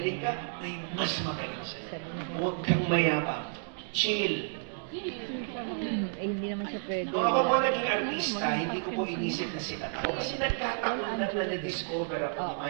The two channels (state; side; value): silent; left; digital silence